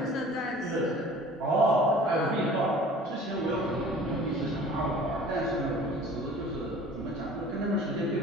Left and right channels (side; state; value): both; normal; correlation 0.46